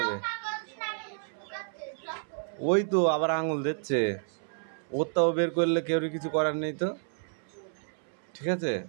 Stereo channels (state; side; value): silent; left; 57 dB below the other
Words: ওই তো আবার আঙুল দিচ্ছে, ওরটাও বের করলে কেউ কিছু করার নেই তো, ঠিক আছে?